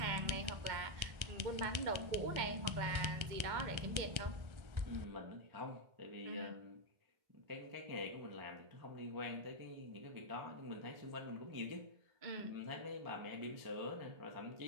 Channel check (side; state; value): left; late; 1.3 ms